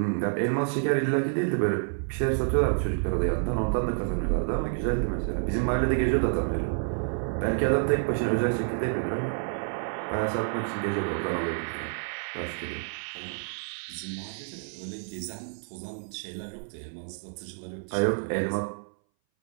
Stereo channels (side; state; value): left; silent; 59 dB below the other